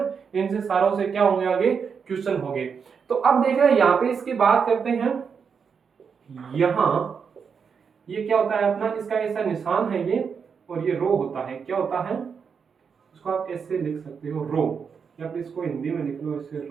इनसे सारों से क्या होंगे, आगे क्वेश्चन होंगे। तो अब देख रहे हैं यहाँ पे इसकी बात करते हैं। यहां ये क्या होता है अपना, इसका ऐसा निशान है ये, और ये रो होता है, क्या होता है, इसको आप ऐसे लिख सकते हो रो, या फिर इसको हिंदी में लिख लो ऐसे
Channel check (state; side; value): quieter; left; 6.2 dB